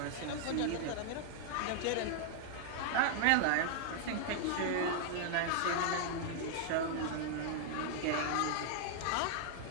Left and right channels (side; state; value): both; different; correlation -0.01